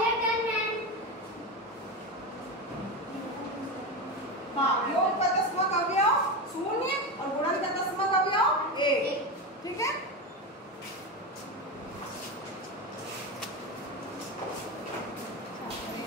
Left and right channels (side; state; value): both; normal; correlation 0.18